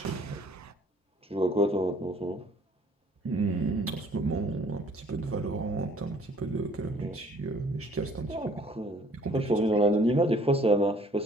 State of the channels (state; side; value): normal; both; correlation 0.57